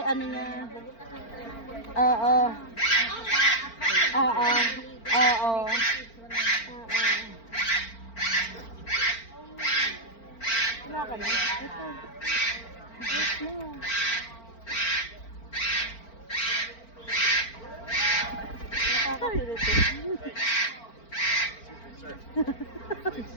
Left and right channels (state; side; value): late; right; 4.4 ms